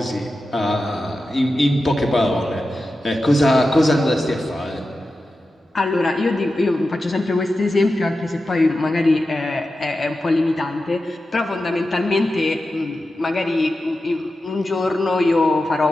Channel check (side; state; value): both; normal; correlation 0.92